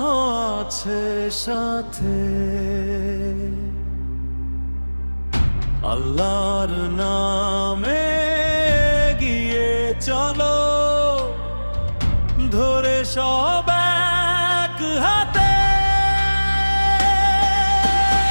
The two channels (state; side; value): inverted; both; correlation -1.00